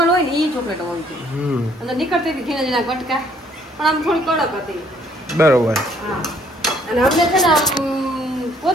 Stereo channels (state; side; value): normal; both; correlation 0.63